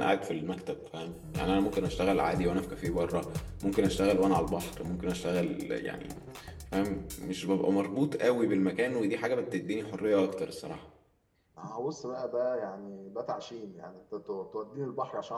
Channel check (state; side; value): identical; both; correlation 1.00